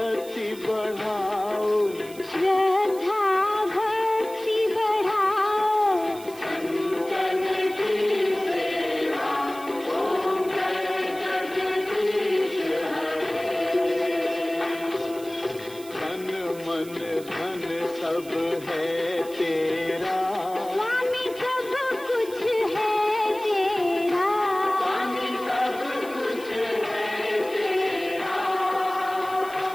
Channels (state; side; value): noise; right; hiss, 19 dB below the sound